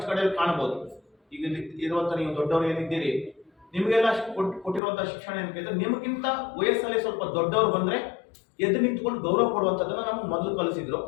ಕಡೆಯಲ್ಲಿ ಕಾಣಬಹುದು. ಈಗ ಇರುವಂತ ನೀವು ದೊಡ್ಡವರು ಏನಿದ್ದೀರಿ, ನಿಮಗೆಲ್ಲ ಕೊಟ್ಟಿರುವಂತಹ ಶಿಕ್ಷಣ ಏನು ಕೇಳಿದ್ರೆ ನಿಮಗಿಂತ ವಯಸ್ಸಲ್ಲಿ ಸ್ವಲ್ಪ ದೊಡ್ಡವರು ಬಂದ್ರೆ ಎದ್ದು ನಿಂತ್ಕೊಂಡು ಗೌರವ ಕೊಡುವಂಥದ್ದನ್ನ ನಮ್ಗೆ ಮೊದಲು ಕಲಿಸಿದ್ರು.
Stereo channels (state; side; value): drops out; right; at 4.8 s